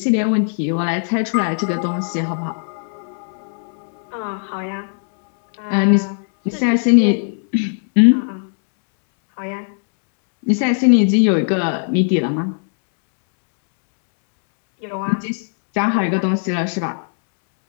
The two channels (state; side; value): silent; right; 67 dB below the other